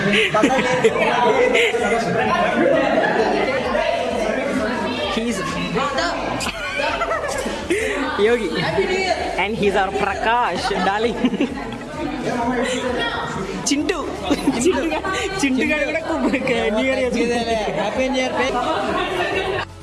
He's Yogi and he's our Prakash, darling. Chintu గారు కూడా న్యూ ఇయర్ చేసుకుంటారు. Happy new year.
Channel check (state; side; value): identical; both; correlation 1.00